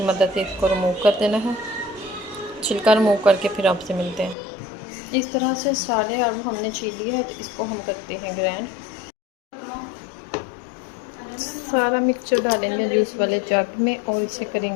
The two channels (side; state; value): right; drops out; at 4.4 s